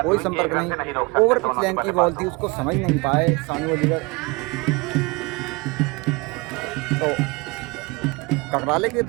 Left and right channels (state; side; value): quieter; left; 26.5 dB